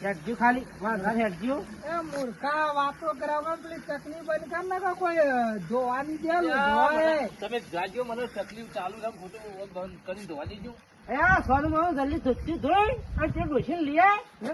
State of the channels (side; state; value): both; identical; correlation 1.00